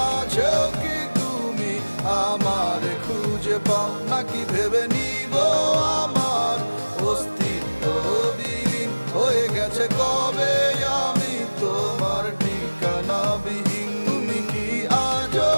কি তুমি আমার খুঁজে পাও, নাকি ভেবে নিব আমার অস্তিত্ব বিলীন হয়ে গেছে কবে আমি তোমার ঠিকানা বিহীন?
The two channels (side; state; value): both; inverted; correlation -1.00